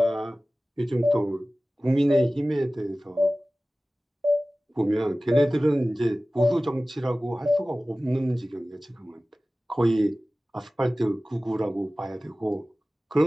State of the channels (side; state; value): both; normal; correlation 0.97